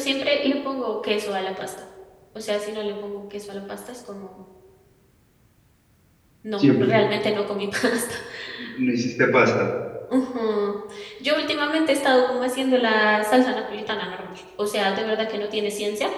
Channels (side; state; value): both; identical; correlation 1.00